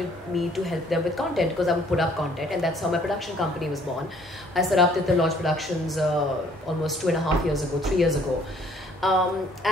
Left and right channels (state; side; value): normal; both; correlation 0.60